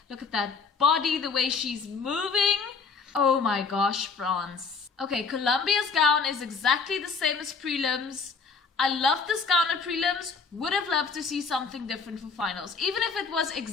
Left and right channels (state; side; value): quieter; right; 5.0 dB